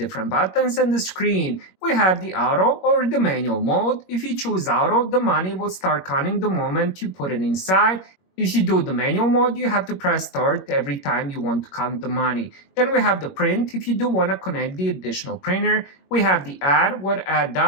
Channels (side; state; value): right; late; 21 ms